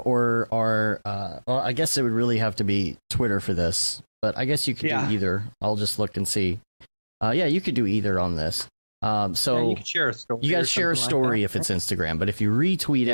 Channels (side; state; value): both; inverted; correlation -1.00